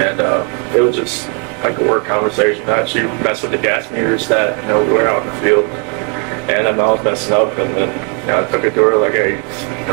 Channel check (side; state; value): left; quieter; 38.5 dB